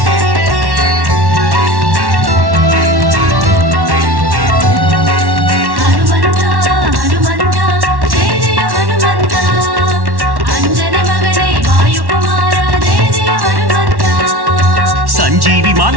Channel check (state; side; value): late; left; 1.1 ms